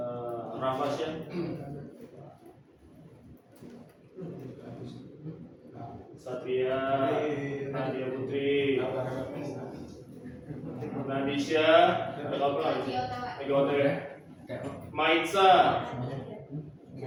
Rafasya, Satria, Nadia Putri, Nadisha, ada apa? Ego ya. Maitza,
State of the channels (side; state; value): both; identical; correlation 1.00